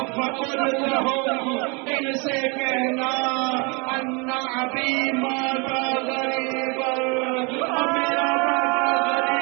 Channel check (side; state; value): left; quieter; 30.7 dB